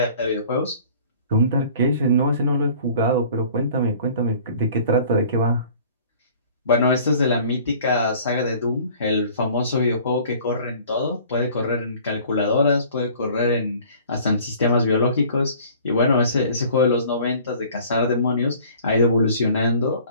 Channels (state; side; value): inverted; both; correlation -0.50